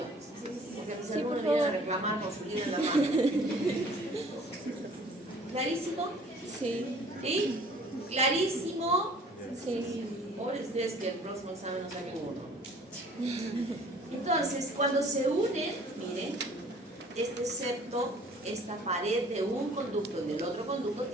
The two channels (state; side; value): normal; both; correlation 0.52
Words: Porque mis alumnos vienen a reclamar con su libro en la mano. ¿Clarísimo? Sí. ¿Sí? ¿Clarísimo? Sí. Pobres ustedes que el próximo examen no saquen uno. Entonces, cuando se unen, miren, este septo, esta pared de un conducto y del otro conducto